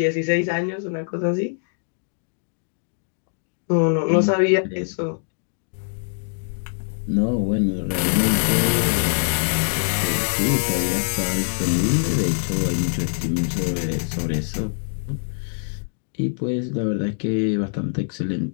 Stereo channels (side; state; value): right; silent; digital silence